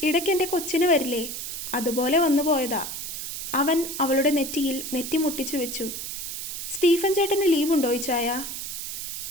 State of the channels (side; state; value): right; noise; hiss, 6 dB below the sound